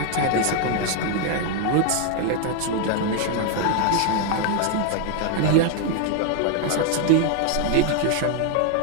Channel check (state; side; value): different; both; correlation 0.00